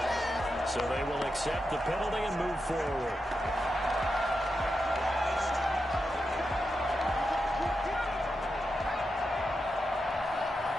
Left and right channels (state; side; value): normal; both; correlation 0.87